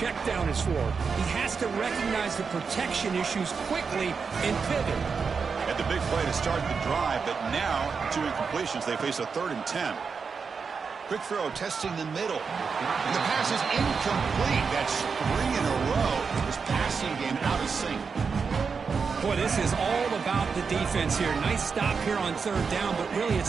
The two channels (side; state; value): left; quieter; 5.4 dB